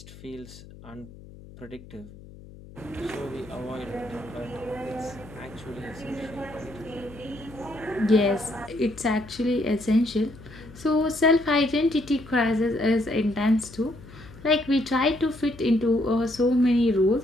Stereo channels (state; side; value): noise; left; hum, 18 dB below the sound